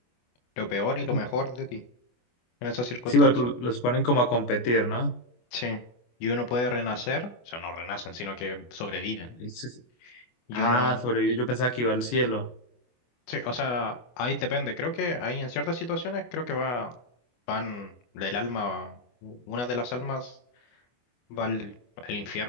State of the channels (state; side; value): late; right; 24 ms